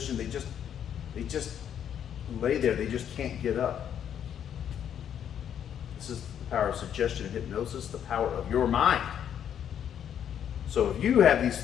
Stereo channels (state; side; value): quieter; right; 9.2 dB